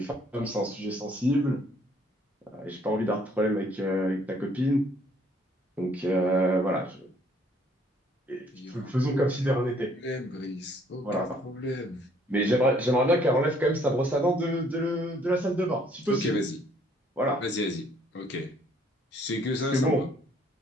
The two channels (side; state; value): both; normal; correlation 0.63